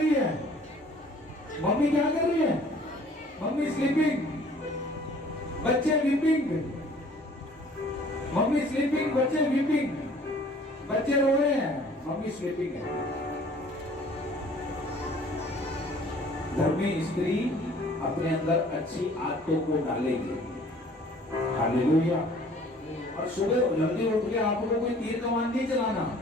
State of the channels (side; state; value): both; normal; correlation 0.53